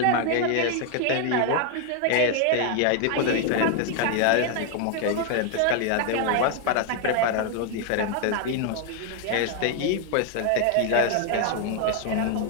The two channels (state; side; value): different; both; correlation 0.00